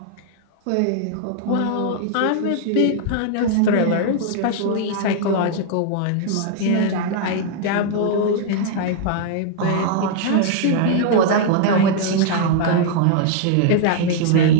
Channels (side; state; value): both; different; correlation 0.00